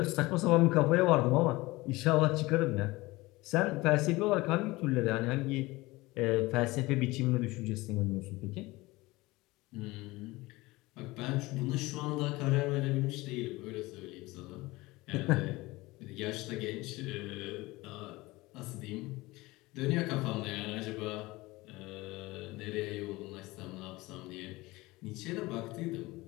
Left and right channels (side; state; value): right; quieter; 20.9 dB